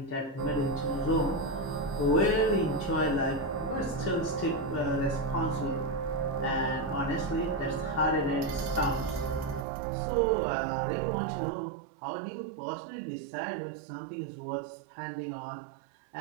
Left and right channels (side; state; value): left; drops out; at 9.7 s